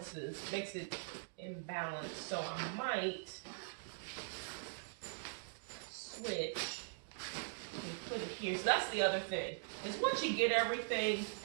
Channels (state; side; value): silent; left; digital silence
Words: makes it imbalanced, so I might switch and put it here. So that's the other thing, is once you get everything